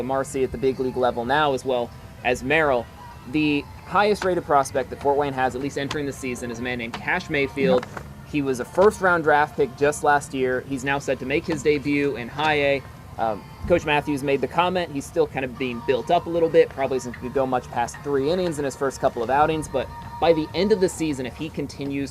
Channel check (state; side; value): identical; both; correlation 1.00